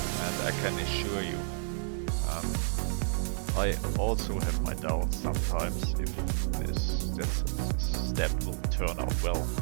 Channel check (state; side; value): silent; left; digital silence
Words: and I can assure you, I also have my doubts sometimes if this step will turn out well,